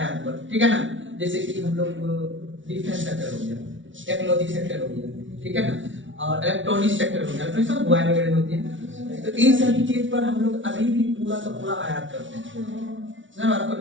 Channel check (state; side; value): late; left; 0.56 ms